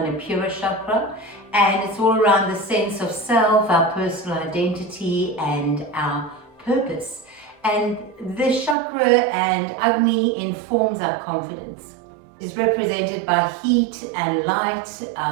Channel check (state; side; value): drops out; left; at 8.8 s